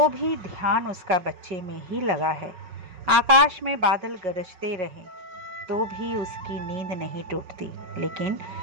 भी ध्यान उसका बच्चे में ही लगा है। आकाश में बादल गरजते रहें तो भी उसकी नींद नहीं टूटती, लेकिन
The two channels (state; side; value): late; left; 5.4 ms